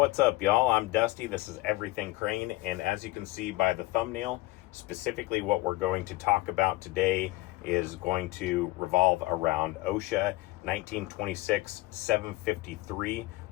up, y'all? I'm Dusty. This is Everything Crane, and as you can see by the thumbnail, specifically what we're going to talk about today is going to revolve around OSHA 1926-753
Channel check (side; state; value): right; quieter; 19.9 dB